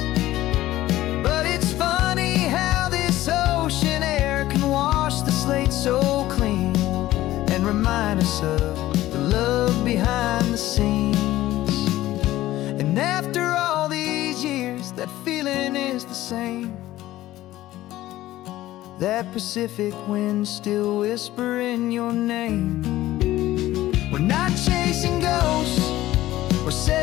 But it's funny how this ocean air can wash the slate so clean and remind us of the love behind the scenes. And after all these years, that feeling is the same. That Pacific wind still whispering your name. We're not chasing ghosts, we're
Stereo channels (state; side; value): quieter; right; 15.4 dB